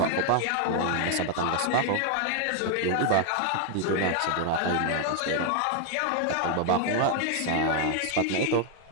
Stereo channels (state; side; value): different; both; correlation 0.00